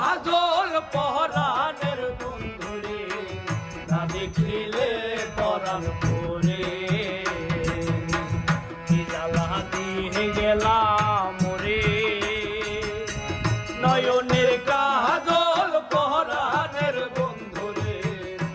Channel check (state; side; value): identical; both; correlation 1.00